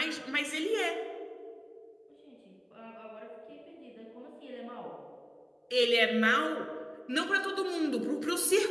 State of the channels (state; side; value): identical; both; correlation 1.00